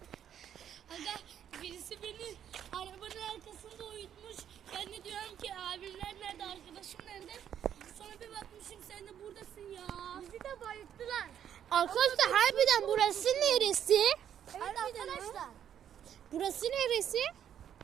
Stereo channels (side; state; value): left; quieter; 9.5 dB